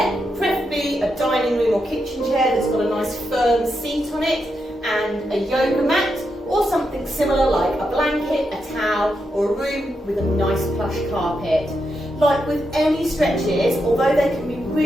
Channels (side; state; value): both; normal; correlation 0.84